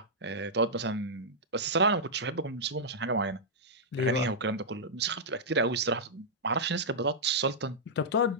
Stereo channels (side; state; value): both; normal; correlation -0.09